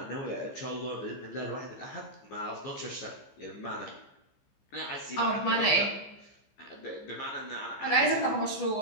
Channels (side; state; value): right; late; 15 ms